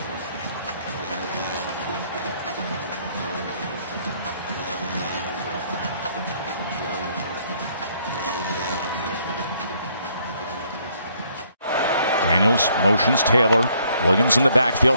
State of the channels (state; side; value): inverted; both; correlation -0.67